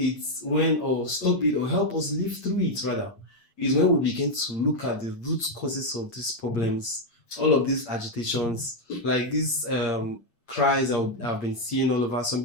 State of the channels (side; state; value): right; late; 8.6 ms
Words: stop it or help us live through it rather, is when we begin to look at the root causes of these problems all of these agitations, like these cries I've been seeing all over.